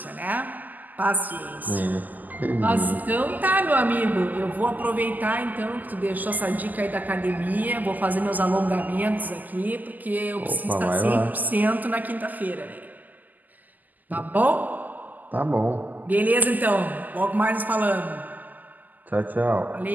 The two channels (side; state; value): left; late; 0.083 ms